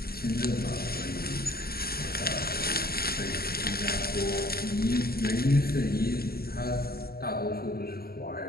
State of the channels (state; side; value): late; right; 0.45 ms